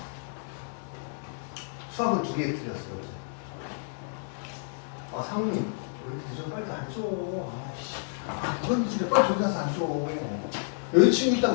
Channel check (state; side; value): silent; right; digital silence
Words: 수학은 2개 틀렸어요. 아 상우님 왜 이렇게 늦어? 빨리 앉아. 아씨. 이건 집에 빨리 저기 가서 앉아. 여자친구